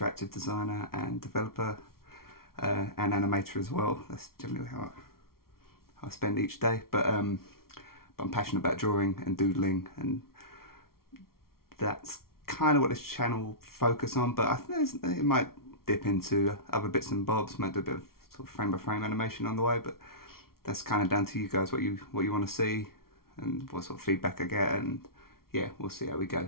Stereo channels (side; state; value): right; late; 0.93 ms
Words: designer and developer and animator as well. That's generally how I spend each day. But I'm passionate about drawing and doodling, and that's kind of what this channel will focus on. But I think it might dip into other bits and bobs. Might do a bit of sort of frame by frame animation on the way, but that's kind of down to you guys what you want to see and what sort of feedback I get, and yeah, we'll see how we